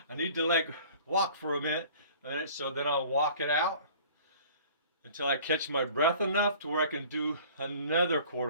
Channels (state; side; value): inverted; both; correlation -0.48